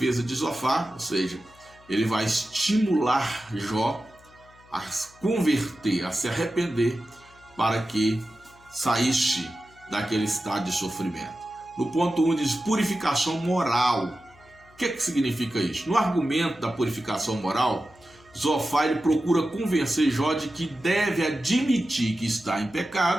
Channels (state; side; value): noise; left; hum, 27 dB below the sound